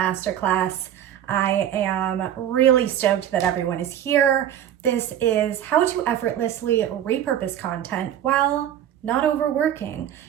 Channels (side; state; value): left; quieter; 10.7 dB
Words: I am really stoked that everyone is here. This is how to effortlessly repurpose content while not overworking.